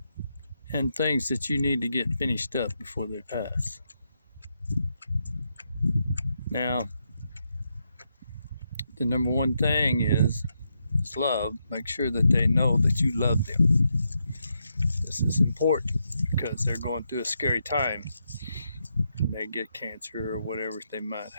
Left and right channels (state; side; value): inverted; both; correlation -0.82